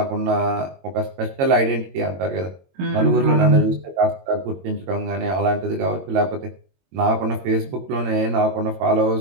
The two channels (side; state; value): left; late; 22 ms